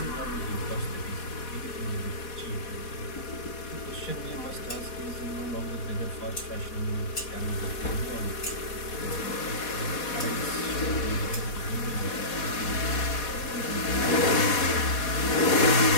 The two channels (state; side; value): late; right; 4.1 ms